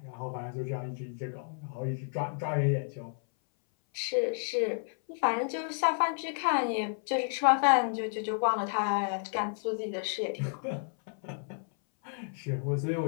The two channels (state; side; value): silent; right; 57 dB below the other